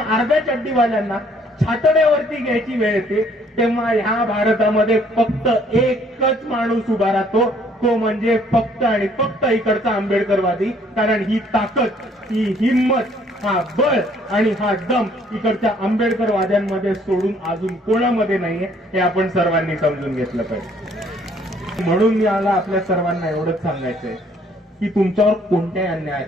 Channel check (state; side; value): normal; both; correlation 0.62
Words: अर्ध्या चड्डीवाल्यांना छातड्यावरती घ्यायची वेळ येते, तेव्हा ह्या भारतामध्ये फक्त एकच माणूस उभा राहतो, तो म्हणजे फक्त आणि फक्त इकडचा आंबेडकरवादी. कारण ही ताकद, ही हिंमत, हा बळ आणि हा दम इकडच्या आंबेडकरवाद्यांमध्ये सोडून अजून कोणामध्ये नाहीये, हे आपण सर्वांनी समजून घेतलं पाहिजे. म्हणून मला आपल्या सर्वांना एवढंच सांगायचंय की तुमच्यावर कोणत्याही अन्याय